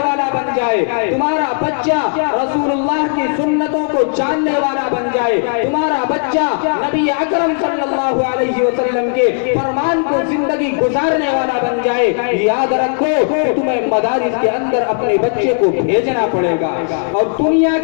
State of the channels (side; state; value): right; silent; 65 dB below the other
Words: بن جائے، تمہارا بچہ رسول اللہ کی سنتوں کو جاننے والا بن جائے، تمہارا بچہ نبی اکرم صلی اللہ علیہ وسلم کے فرمان کو زندگی گزارنے والا بن جائے، یاد رکھو کہ تمہیں مدارس کے اندر اپنے بچے کو بھیجنا پڑے گا۔ اور دنیا